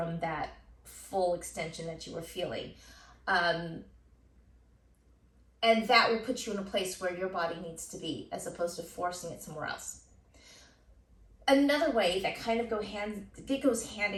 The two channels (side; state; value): both; identical; correlation 1.00